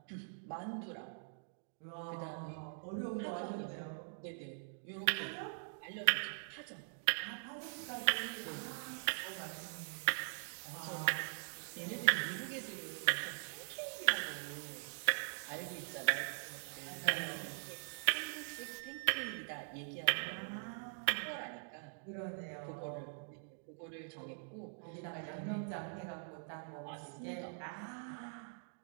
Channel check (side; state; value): left; silent; digital silence